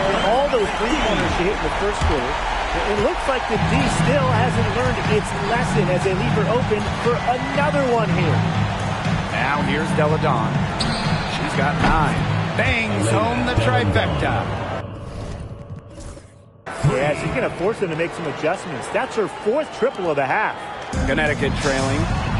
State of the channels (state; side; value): identical; both; correlation 1.00